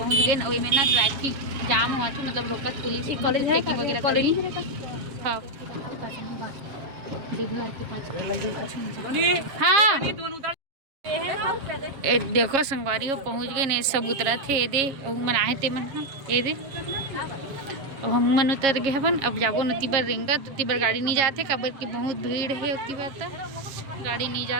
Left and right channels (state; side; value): late; left; 7.3 ms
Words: गए वही में ना ट्रैफिक जाम हुआ था मतलब रोकत पुलिस चेकिंग वगैरह करी। हाँ हाँ ए देखो संगवारी हो पहुंच गए ने सब उतरा थे दे मन आए थे मन ये दे अब हम मन उतर गए हवन। अब जाबो नती बार रेंगा तो उती बार गाड़ी नहीं जाते काबर की बहुत भीड़ है उती बार तक गाड़ी नहीं जा